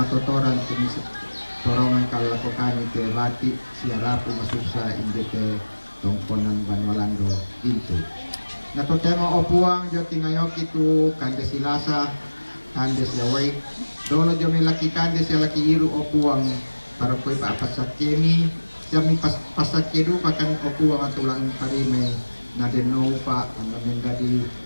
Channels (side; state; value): both; inverted; correlation -1.00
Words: tumis torongan kalakokan ke bati siarapu masusa indeke tongkonan banwalando itu nato tema opuang jo tingayok itu kandes silasa kandes yawai dolo jo milaki kandes laki iru opuang para koi pa pasakemi jami pasakedu pakan opuang atulang parime na deno pa ang menjadi